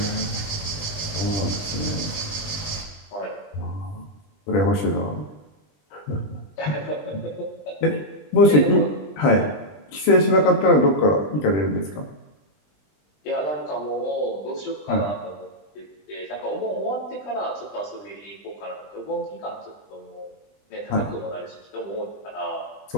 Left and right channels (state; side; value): late; right; 20 ms